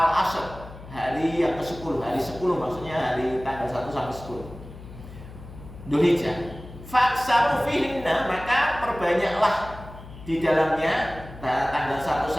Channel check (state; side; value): noise; left; hum, 16 dB below the sound